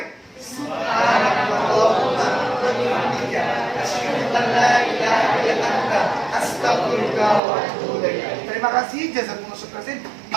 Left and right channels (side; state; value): left; drops out; at 7.4 s